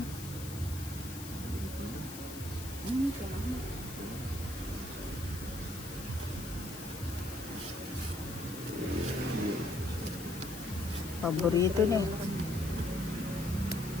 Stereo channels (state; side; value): noise; left; hiss, 11 dB below the sound